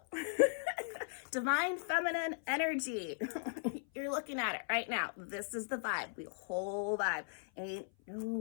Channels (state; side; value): silent; right; 53 dB below the other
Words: divine feminine energy. You're looking at it right now. This is the vibe. The whole vibe. Ain't no